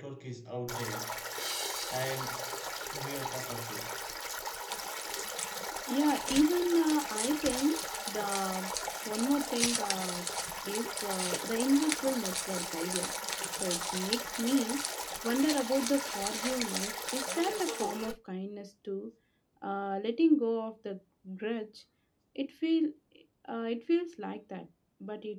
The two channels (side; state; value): both; identical; correlation 1.00